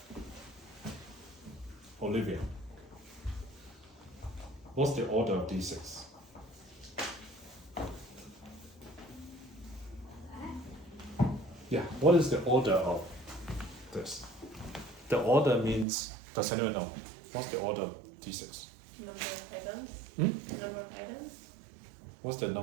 Olivia. What's the order of d6? Yeah, what is the order of this? The order means, does anyone know? What's the order of d6? Number of items. Hmm? Number of items. What's the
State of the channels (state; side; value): drops out; left; at 15.9 s